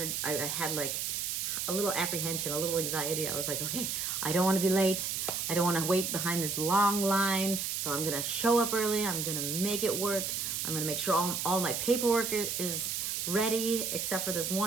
had like a little apprehension, a little anxiety. I was like, okay, I don't want to be late. I don't want to wait behind this long line. So I'm going to show up early. I'm going to make it work. I'm going to make sure all my paperwork is ready, except for this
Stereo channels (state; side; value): noise; right; hiss, 1 dB below the sound